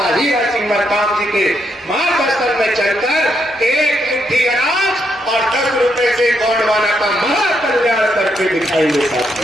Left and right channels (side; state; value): both; normal; correlation 0.78